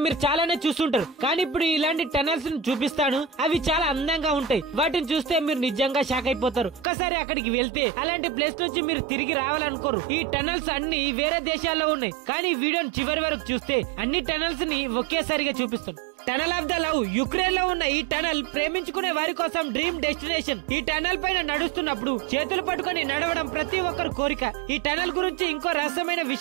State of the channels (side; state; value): left; drops out; at 6.9 s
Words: మీరు చాలానే చూస్తుంటారు, కానీ ఇప్పుడు ఇలాంటి టనల్స్ ని చూపిస్తాను. అవి చాలా అందంగా ఉంటాయి. వాటిని చూస్తే మీరు నిజంగా షాక్ అయిపోతారు. ఒక్కసారి అక్కడికి వెళ్తే అలాంటి ప్లేస్ నుంచి మీరు తిరిగి రావాలనుకోరు. ఈ టనల్స్ అన్ని వేరే దేశాల్లో ఉన్నాయి, కానీ ఈ వీడియోని చివరి వరకు చూస్తే అన్ని టనల్స్ ని ఒకేసారిగా చూపిస్తాను. Tunnel of the love, Ukraine లో ఉన్న ఈ టనల్ ప్రేమించుకునే వారి కోసం డ్రీమ్ డెస్టినేషన్. ఈ టనల్ పైన నడుస్తున్నప్పుడు చేతులు పట్టుకుని నడవడం ప్రతి ఒక్కరి కోరిక. ఈ టనల్ గురించి ఇంకో రహస్యమైన